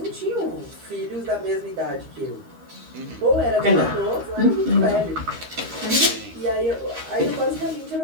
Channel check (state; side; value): late; left; 13 ms